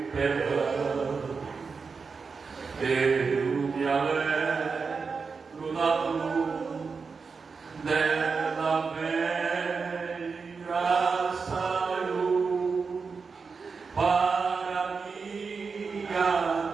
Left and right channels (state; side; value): quieter; left; 5.0 dB